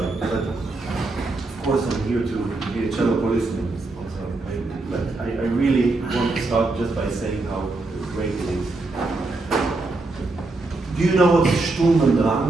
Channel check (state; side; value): quieter; left; 3.2 dB